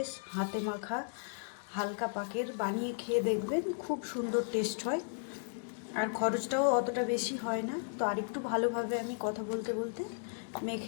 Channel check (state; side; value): silent; right; digital silence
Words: হাতে মাখা হালকা পাকের বানিয়ে খেয়ে দেখবেন, খুব সুন্দর টেস্ট হয়। আর খরচটাও অতটা বেশি হয় না। তো আরেকটু ভালোভাবে আমি কথা বলতে বলতে